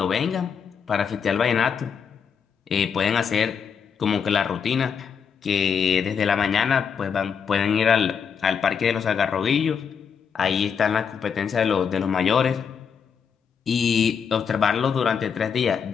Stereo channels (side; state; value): right; quieter; 6.8 dB